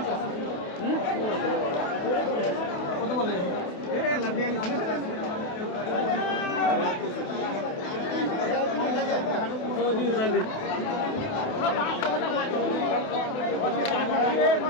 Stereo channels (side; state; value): right; late; 28 ms